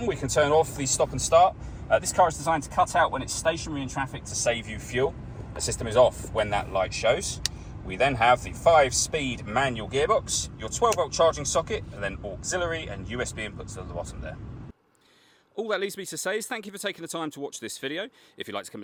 we can turn off the stop and start. This car is designed to cut out when it's stationary in traffic to save you fuel. The system is off when that light shows. We then have the 5-speed manual gearbox, your 12-volt charging socket, and then auxiliary and USB inputs at the bottom there. All that leaves me to say is thank you for taking the time to watch this video. If you'd like to come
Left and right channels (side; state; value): both; identical; correlation 1.00